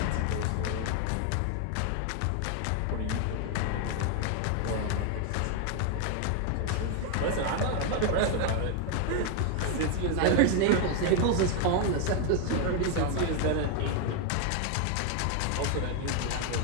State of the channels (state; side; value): different; both; correlation 0.00